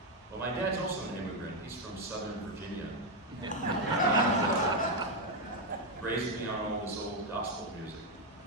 Well, my dad's also an immigrant. He's from Southern Virginia. Raised me on all this old gospel music.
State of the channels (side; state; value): both; normal; correlation 0.04